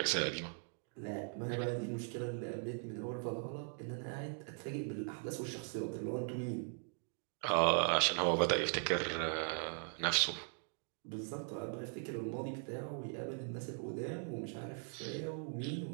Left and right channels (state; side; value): silent; left; 51 dB below the other